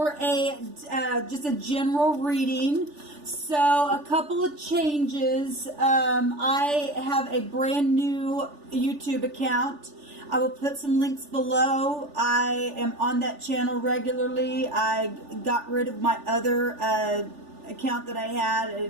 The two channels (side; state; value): left; late; 3.4 ms